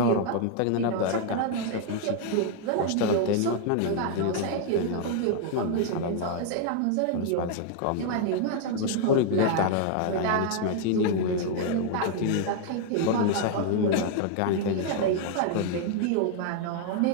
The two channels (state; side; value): different; both; correlation 0.00